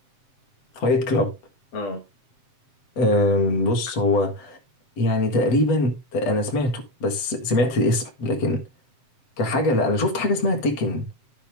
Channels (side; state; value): right; late; 7.6 ms